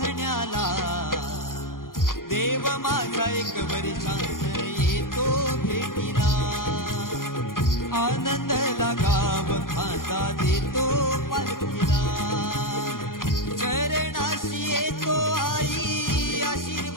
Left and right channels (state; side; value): late; right; 0.90 ms